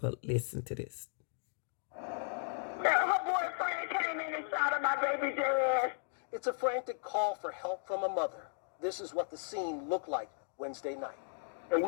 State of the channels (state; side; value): silent; right; digital silence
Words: listen to this. Her boyfriend came in and shot at my baby dad. It's a frantic call for help from a mother. This is what the scene looked like Wednesday night. And